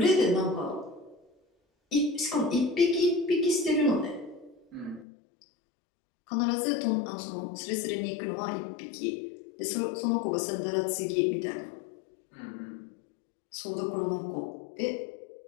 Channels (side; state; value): right; drops out; at 5.1 s